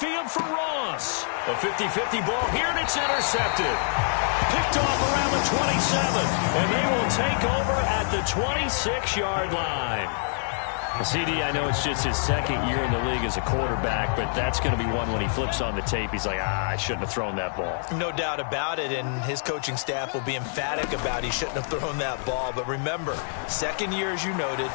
for Ross. A 50-50 ball here, and it's intercepted. Picked off around the 27, and they will take over at the 26-yard line. CD, I know it's just his 2nd year in the league as a quarterback, but that's going to be one when he flips on the tape. He's like, I shouldn't have thrown that ball. No doubt about it, and his coaching staff will be emphatic about he shouldn't have thrown that ball. But remember, 2nd year, as you noted,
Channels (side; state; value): right; silent; digital silence